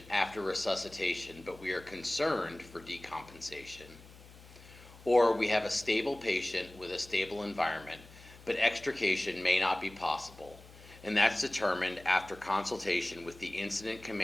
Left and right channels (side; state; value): left; noise; hum, 20 dB below the sound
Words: after resuscitation, but we are concerned for decompensation. Or we have a stable patient with a stable environment, but extrication may not be possible, and that's determined after consultation with the incident